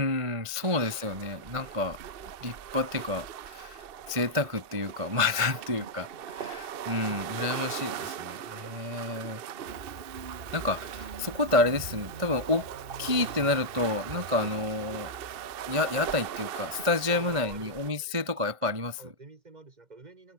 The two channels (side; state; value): left; late; 1.5 ms